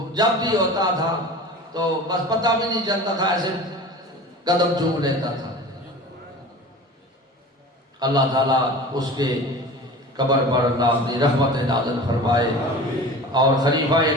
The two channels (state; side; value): normal; both; correlation 0.37